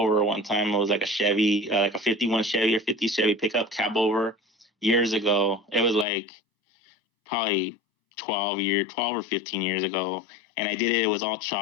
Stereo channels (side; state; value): right; drops out; at 6.1 s